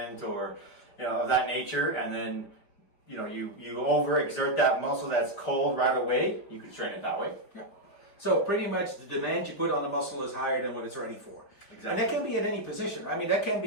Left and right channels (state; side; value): late; right; 5.0 ms